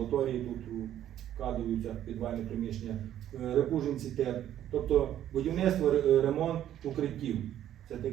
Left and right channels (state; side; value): quieter; left; 11.4 dB